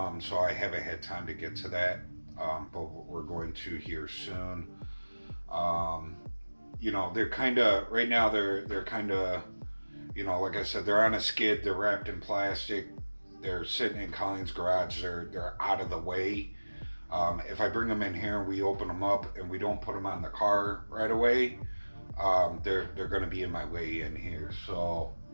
so I haven't had time to get to that. But we're going to here soon. You know, they're kind of right now. They're kind of, you know, like I said, they're on a skid. They're wrapped in plastic. They're sitting in Colleen's garage. They're out of the way. If I bring them in here and we open them up and we don't put them on the car right away, they're going to be in my way in here. So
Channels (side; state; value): both; inverted; correlation -1.00